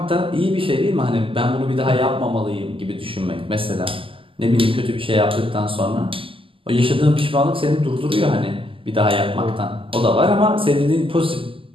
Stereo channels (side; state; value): left; late; 0.25 ms